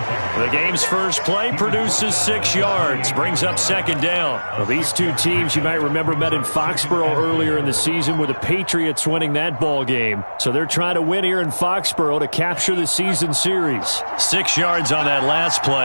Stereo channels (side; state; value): both; inverted; correlation -1.00